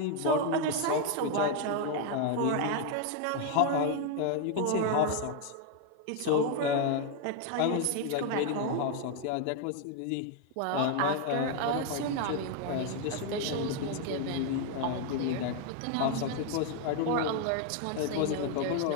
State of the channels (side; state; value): both; different; correlation 0.01